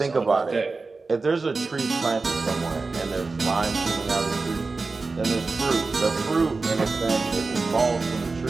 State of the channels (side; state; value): left; quieter; 3.9 dB